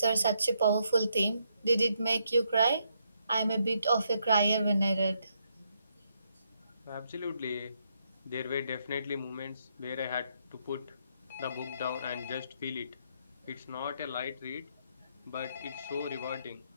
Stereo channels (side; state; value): both; inverted; correlation -0.76